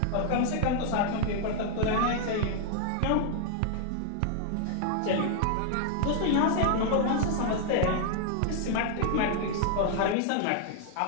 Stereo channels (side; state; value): both; different; correlation 0.00